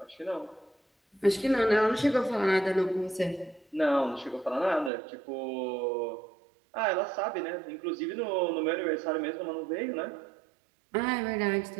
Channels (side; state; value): left; drops out; at 4.9 s